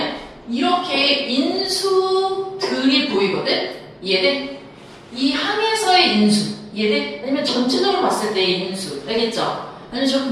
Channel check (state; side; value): identical; both; correlation 1.00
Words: 이렇게 인수들이 보이거든? 이해돼? 이 항에서의 인수. 이해돼? 아니면 전체적으로 봤을 때의 인수. 알겠죠? 아니면 저렇게